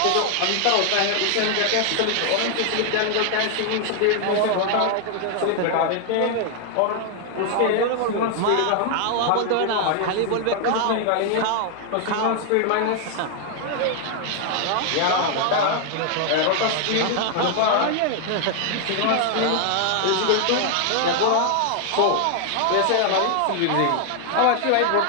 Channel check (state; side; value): different; both; correlation 0.00